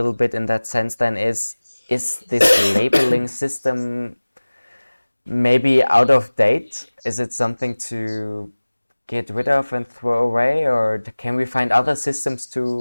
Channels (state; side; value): inverted; both; correlation -1.00